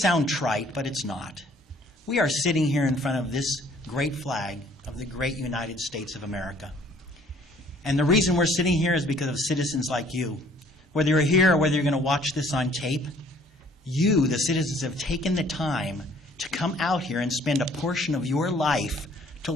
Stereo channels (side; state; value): both; normal; correlation 0.58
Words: trite, but it's not. We are sitting here in front of this great flag of the great United States of America. And the reason we're sitting here is because of citizens like you. Whether you're here or whether you're going to watch this on tape, you, the citizens, have taken the time to come out here and spend a portion of your life to